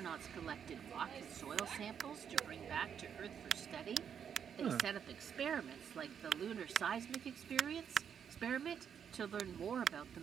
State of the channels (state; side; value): quieter; left; 7.9 dB